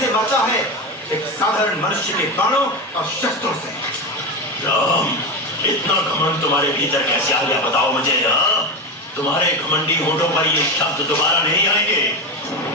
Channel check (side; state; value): both; normal; correlation 0.17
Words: मरता है एक साधारण मनुष्य के बाणों और शस्त्रों से। राम, इतना घमंड तुम्हारे भीतर कैसे आ गया बताओ मुझे। तुम्हारे घमंडी होठों पर ये शब्द दोबारा नहीं आएंगे।